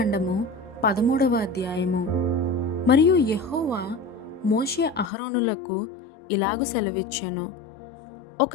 13వ అధ్యాయము. మరియు యెహోవా మోషే అహరోనులకు ఇలాగు సెలవిచ్చెను,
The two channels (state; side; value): drops out; right; at 5.1 s